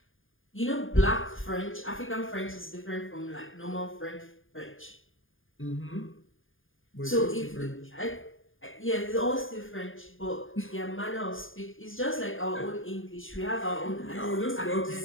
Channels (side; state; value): right; late; 0.59 ms